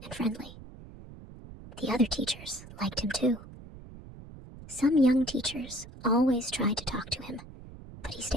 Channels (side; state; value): right; noise; rumble, 16 dB below the sound